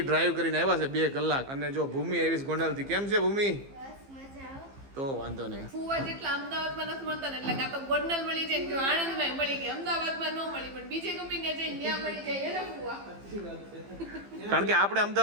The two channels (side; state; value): left; late; 15 ms